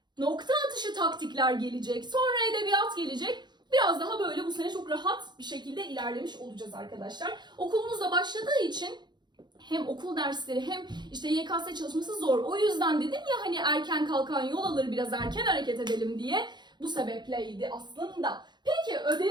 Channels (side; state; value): left; late; 0.21 ms